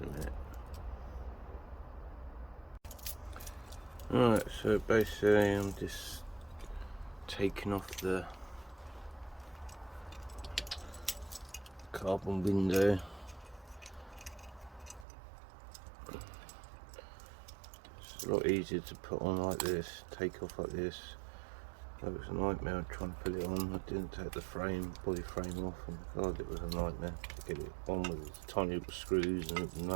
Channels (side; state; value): left; drops out; at 15.1 s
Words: a minute. Right, so basically I'm just taking off the carbon window. It's a lot easier to put on like this, take off like this. That was a nightmare trying to put it on. I didn't take the body frame off, and God, it was a nightmare to get it on with these tiny little screws and